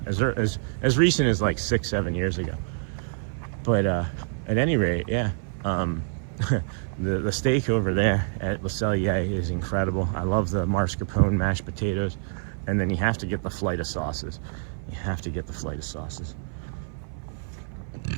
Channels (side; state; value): left; silent; 57 dB below the other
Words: recent as like 6-7 years ago. But at any rate, yeah, the steak over there at Le Cellier is incredible. I love the mascarpone mashed potatoes, and then you have to get the flight of sauces. You have to get the flight of sauces.